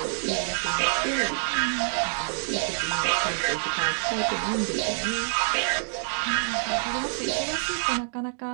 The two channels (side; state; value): left; silent; 60 dB below the other